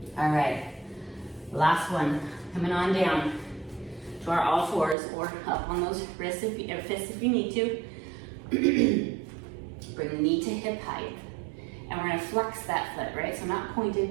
All right, last one. Coming on down to our all fours or up on those wrists or fists if you need to. Bring the knee to hip height. And we're gonna flex that foot, right? So not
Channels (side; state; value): left; drops out; at 5.0 s